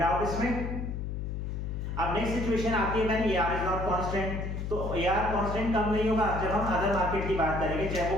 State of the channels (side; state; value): left; noise; hum, 4 dB below the sound